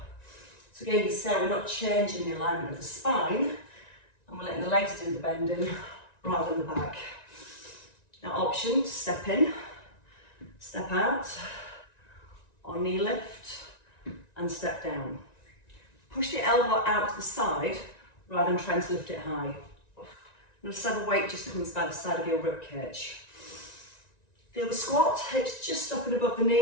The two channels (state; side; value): late; right; 1.9 ms